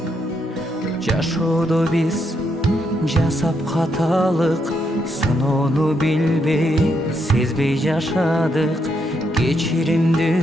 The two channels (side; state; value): both; normal; correlation 0.78